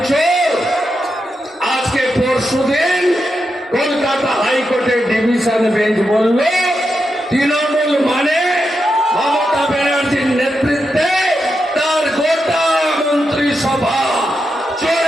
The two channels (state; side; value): normal; both; correlation 0.86